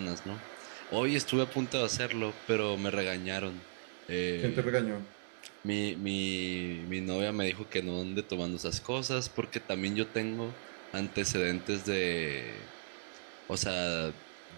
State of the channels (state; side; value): silent; left; digital silence